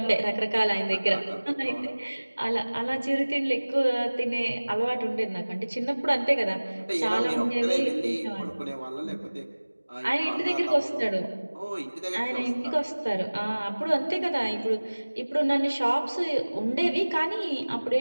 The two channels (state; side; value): inverted; both; correlation -1.00